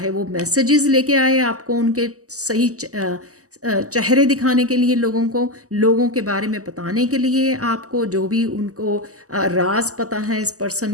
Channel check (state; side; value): late; left; 0.66 ms